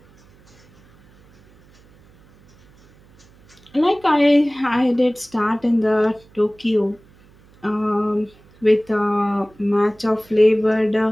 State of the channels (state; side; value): noise; right; hum, 29 dB below the sound